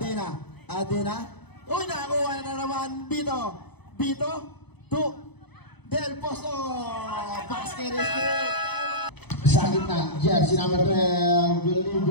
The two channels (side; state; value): right; late; 0.99 ms